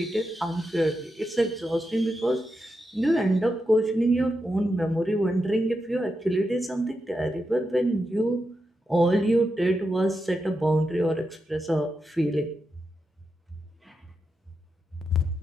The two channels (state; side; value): normal; both; correlation 0.87